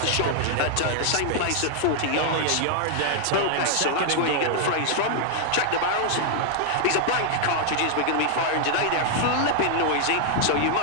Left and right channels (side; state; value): both; different; correlation 0.00